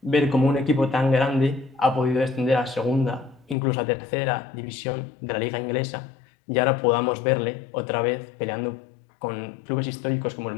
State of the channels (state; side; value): drops out; right; at 3.6 s